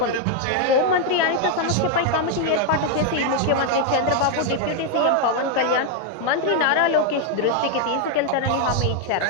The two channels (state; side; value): different; both; correlation 0.00